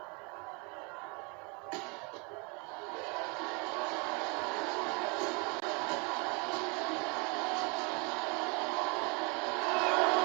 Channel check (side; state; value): left; quieter; 31.5 dB